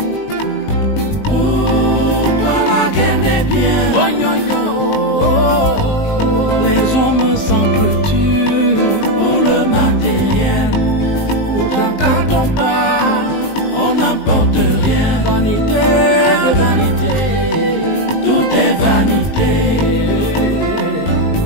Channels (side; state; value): right; late; 19 ms